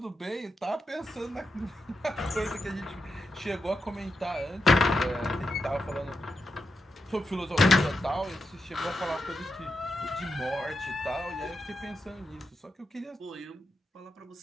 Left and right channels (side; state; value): both; normal; correlation 0.87